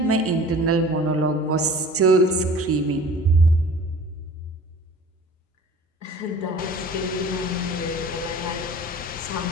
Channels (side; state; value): both; normal; correlation 0.45